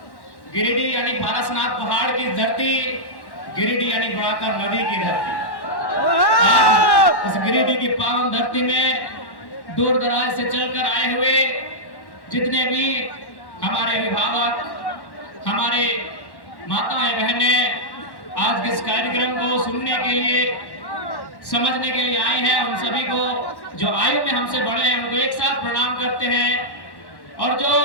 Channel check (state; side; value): late; right; 1.1 ms